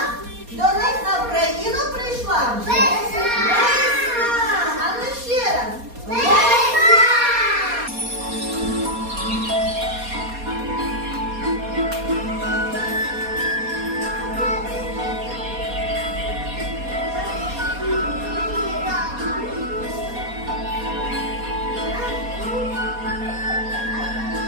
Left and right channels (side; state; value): left; late; 4.2 ms